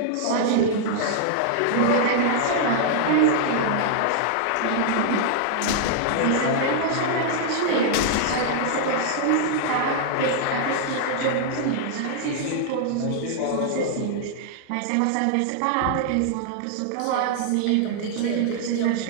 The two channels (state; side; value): different; both; correlation -0.01